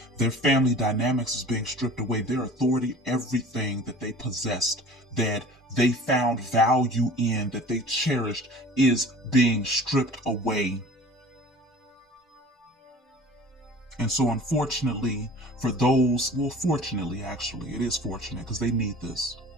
Their family dynamics is being stripped away. Their authority, everything that they possessed, that they found value in, that they cherished, is being stripped away. And so unfortunately, for those, well, fortunately, actually, it is fortunate because they need this.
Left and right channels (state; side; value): normal; both; correlation 0.43